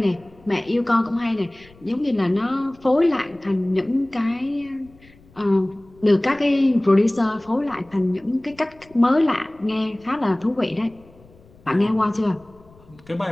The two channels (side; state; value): left; noise; rumble, 27 dB below the sound